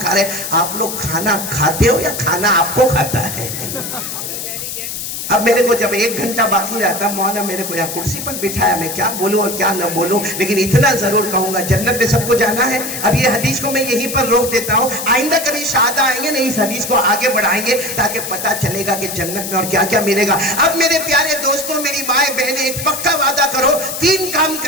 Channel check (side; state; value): left; noise; hiss, 6 dB below the sound